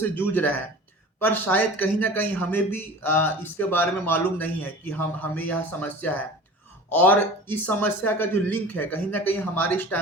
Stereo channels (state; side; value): normal; both; correlation 0.39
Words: जूझ रहे हैं, पर शायद कहीं ना कहीं हमें भी इसके बारे में मालूम नहीं है कि हम हमें यह समस्या है। और इस समस्या का जो लिंक है कहीं ना कहीं हमारे